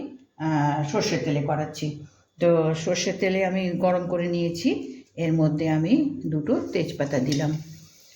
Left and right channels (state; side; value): identical; both; correlation 1.00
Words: সর্ষের তেলে করাচ্ছি। তো সর্ষের তেলে আমি গরম করে নিয়েছি, এর মধ্যে আমি 2টো তেজপাতা দিলাম,